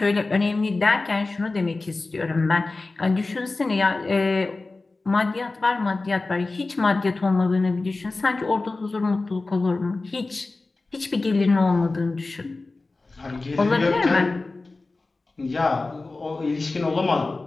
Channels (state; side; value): quieter; right; 3.4 dB